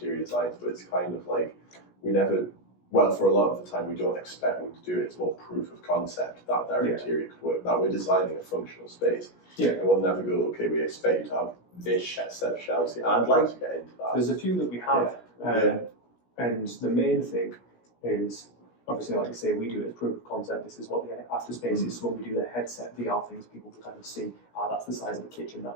designs, but it's kind of like, we never well, for a lot of the time, we don't expect them to do it. It's more proof of concept that their interior could work, that we're designing a functional space. Yeah. And we'll never go, okay, we expect you to have this set of shelves here. I'd like to get into that. There's a few that we have, and the main thing is, obviously, like you say, we do it as proof of concept. This is what the after space is. So when we do the headset VR things, people can kind of see, that's the size of the kitchen,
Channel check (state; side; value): late; right; 17 ms